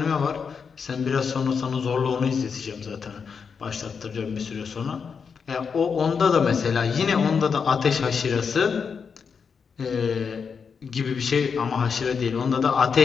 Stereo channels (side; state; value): right; quieter; 6.0 dB